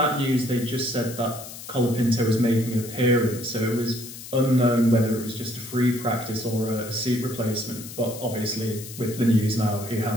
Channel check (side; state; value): left; noise; hiss, 13 dB below the sound